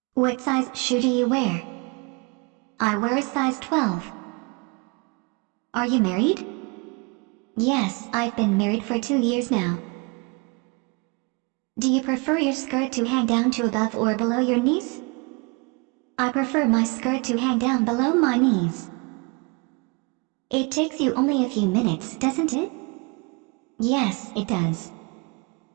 What size shoe do you wear? I wear a size 12. Are you married? Yes, I've been married for 2 years now. Do you prefer your skirt to hang down to above or below your knees? I prefer my skirt to hang down below my knees. It takes you only a few minutes, doesn't it? Yes, it does.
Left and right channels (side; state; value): left; quieter; 30.3 dB